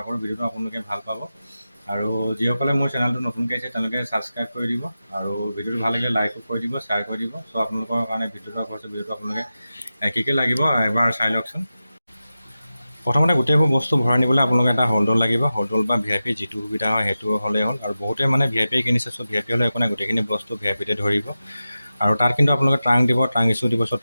কৰোঁ ভিডিঅ'টো আপোনালোকে ভাল পাব। আৰু যিসকলে মোৰ চেনেলটো নতুনকৈ আহিছে তেওঁলোকে ছাবস্ক্ৰাইব কৰি দিব, আৰু ভিডিঅ'টো ভাল লাগিলে লাইকো কৰি দিব, শ্বেয়াৰ কৰি দিব। চ' আপোনালোকৰ কাৰণে ভিডিঅ'টো আগবঢ়াইছোঁ, ভিডিঅ'টো আপোনালোকে কি লাগিব এবাৰ চাই লওকচোন। প্ৰথমতে গোটেইবোৰ বস্তু ভৰাই নিবলৈ আপোনালোকে এটা হোল্ডৰ লাগিব। হোল্ডৰ বা VIP যিটো সুবিধা হয় সেইটো হ'লেই হ'ল। আৰু বহুতে VIP কিনিছে, চ' VIP হ'লে একো নাই, গোটেইখিনি বস্তু VIPতে ধৰিব। আৰু তাত কিন্তু আপোনালোকে ট্ৰাংক দিব, ট্ৰাংক ইছ্যু দিব। চ'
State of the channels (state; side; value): inverted; both; correlation -0.93